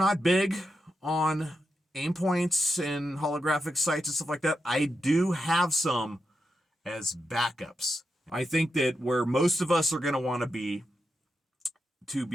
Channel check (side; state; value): both; normal; correlation 0.86